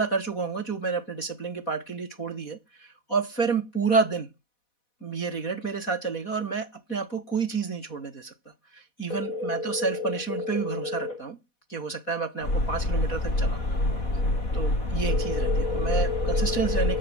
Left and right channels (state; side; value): late; right; 4.1 ms